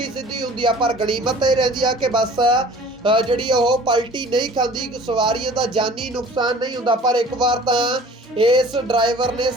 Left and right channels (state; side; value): normal; both; correlation 0.47